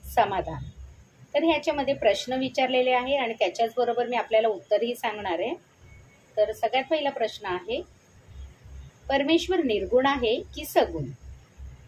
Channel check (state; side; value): identical; both; correlation 1.00